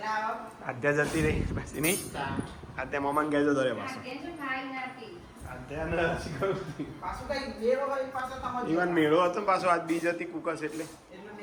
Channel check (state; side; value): identical; both; correlation 1.00